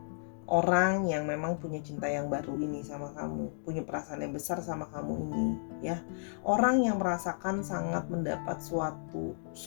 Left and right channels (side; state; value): right; silent; digital silence